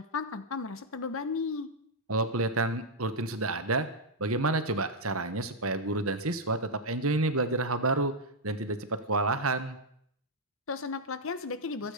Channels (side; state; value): both; normal; correlation -0.04